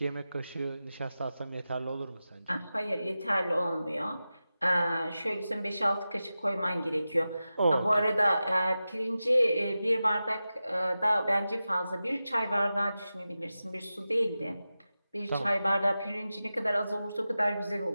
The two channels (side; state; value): both; inverted; correlation -0.93